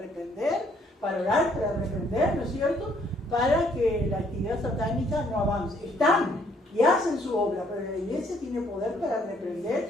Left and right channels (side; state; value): both; normal; correlation 0.65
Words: para orar, para reprender, ¿no es cierto?, para que la actividad satánica no avance. Están y hacen su obra, pero la iglesia tiene poder para reprender